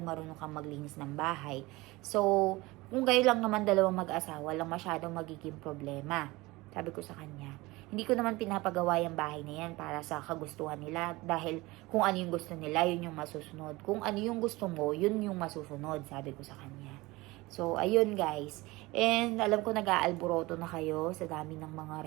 marunong kang maglinis ng bahay. So, kung kayo lang naman dalawang mag-asawa, lang masyadong magiging problema. Sabi ko sa kanya, hindi ko naman pinapagawa yung bahay na yan para sa kagustuhan nila. Dahil kung ano yung gusto nila, yun yung masusunod. Kung ano yung gusto mo, yun yung masusunod, sabi ko sa kanya. So, ayun guys. And alam ko nag-aalboroto na kayo sa dami ng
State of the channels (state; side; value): quieter; left; 21.3 dB